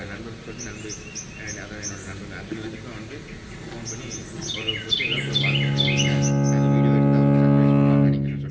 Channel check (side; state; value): both; identical; correlation 1.00